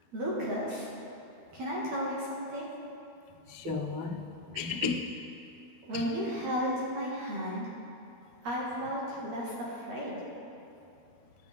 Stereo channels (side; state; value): left; late; 12 ms